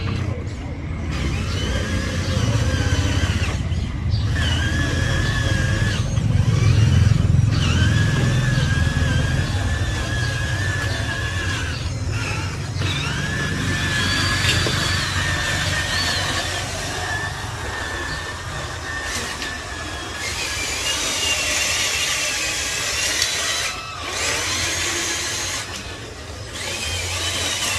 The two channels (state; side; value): identical; both; correlation 1.00